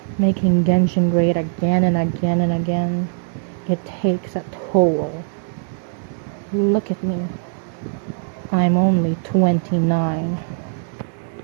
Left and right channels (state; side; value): silent; left; 62 dB below the other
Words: Making Genshin great again and again and again. It takes a toll. Look at me. I'm only 29.